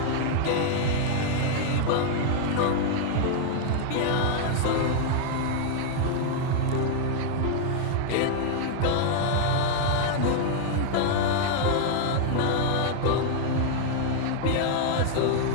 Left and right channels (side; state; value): both; different; correlation 0.00